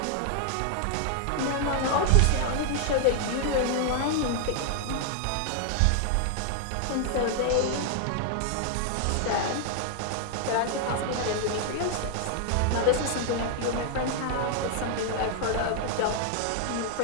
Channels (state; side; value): different; both; correlation 0.00